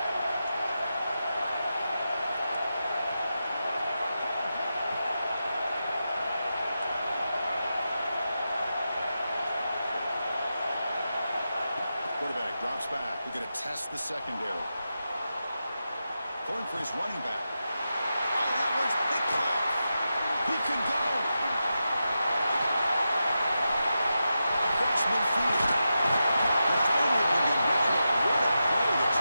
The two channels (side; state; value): both; inverted; correlation -0.90